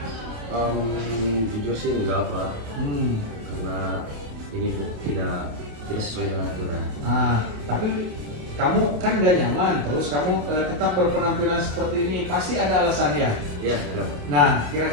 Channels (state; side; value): late; left; 28 ms